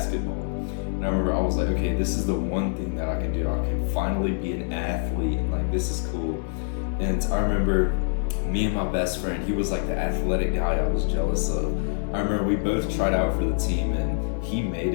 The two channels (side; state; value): right; silent; digital silence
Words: And I remember I was like, okay, this is the one thing that I can do. I can finally be an athlete, and like, this is cool. And I remember me and my best friend, he was like the athletic guy I was jealous of. I remember we both tried out for the team, and he made